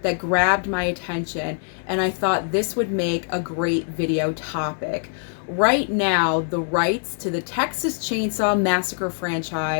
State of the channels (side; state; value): right; silent; digital silence